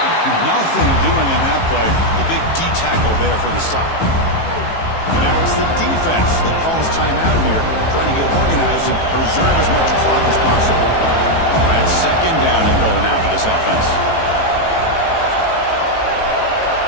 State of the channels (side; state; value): right; late; 18 ms